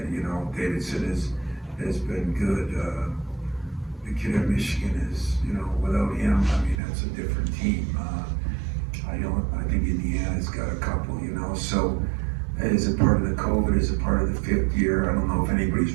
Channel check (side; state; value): left; drops out; at 6.8 s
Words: Davidson has been good. The kid at Michigan is, without him, I mean, that's a different team. I think Indiana's got a couple, so is it part of the COVID, is it part of the fifth year? I don't know if anybody's